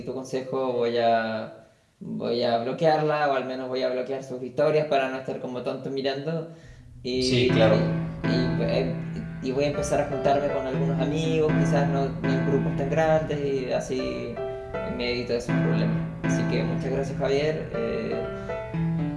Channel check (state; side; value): identical; both; correlation 1.00